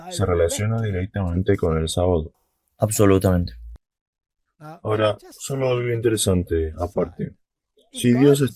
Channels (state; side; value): identical; both; correlation 1.00